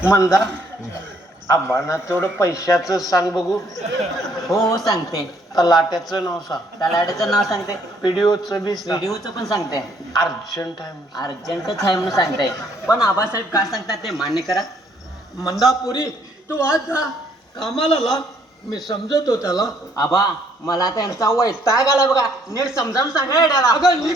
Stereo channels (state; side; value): normal; both; correlation 0.66